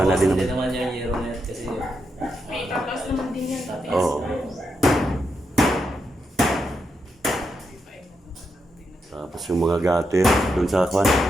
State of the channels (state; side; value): normal; both; correlation 0.84